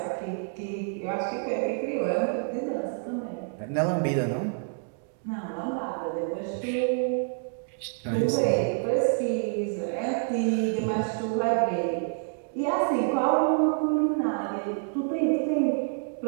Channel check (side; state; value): left; silent; 60 dB below the other